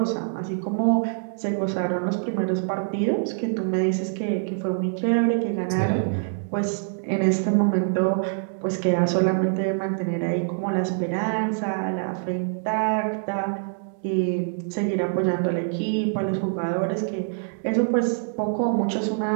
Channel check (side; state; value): left; silent; digital silence